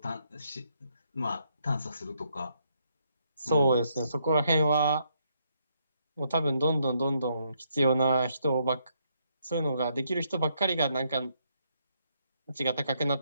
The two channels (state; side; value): inverted; both; correlation -0.75